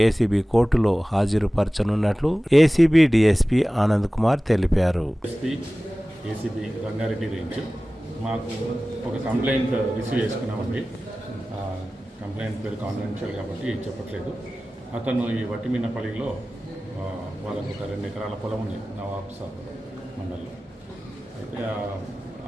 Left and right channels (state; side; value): normal; both; correlation 0.97